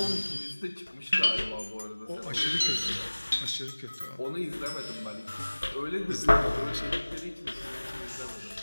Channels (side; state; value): both; inverted; correlation -1.00